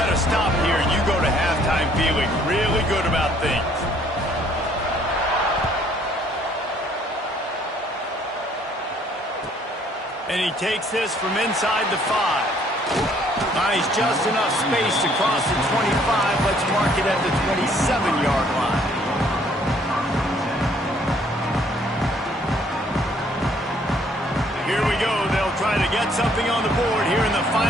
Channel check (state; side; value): normal; both; correlation 0.63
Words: to stop here. You go to halftime feeling really good about things. And he takes this from inside the 5. Nice, just enough space to cross the 25. Let's mark it at the 27-yard line. Here we go. They'll try to get something on the board here in the